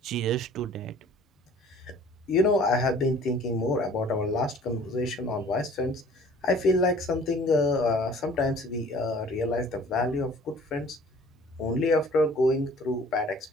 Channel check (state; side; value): normal; both; correlation 0.50